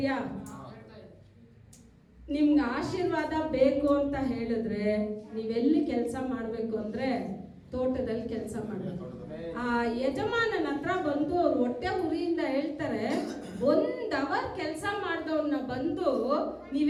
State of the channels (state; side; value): identical; both; correlation 1.00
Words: ನಿಮ್ಗೆ ಆಶೀರ್ವಾದ ಬೇಕು ಅಂತ ಹೇಳಿದ್ರೆ ನೀವೆಲ್ಲಿ ಕೆಲಸ ಮಾಡಬೇಕು ಅಂದ್ರೆ ತೋಟದಲ್ಲಿ ಕೆಲಸ ಮಾಡಬೇಕು. ಆ ಯಜಮಾನನ ಹತ್ರ ಬಂದು ಅವ್ರು ಹೊಟ್ಟೆ ಉರಿಯಿಂದ ಹೇಳ್ತಾರೆ, 1 ಅವರ್ ಕೆಲಸ ಮಾಡಿದವ್ರನ್ನ ಬಂದು